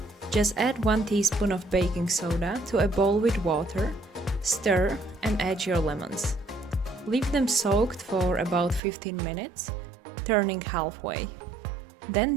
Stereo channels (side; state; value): left; drops out; at 8.8 s